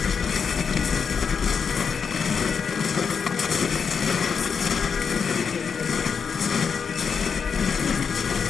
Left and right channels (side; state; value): right; quieter; 6.2 dB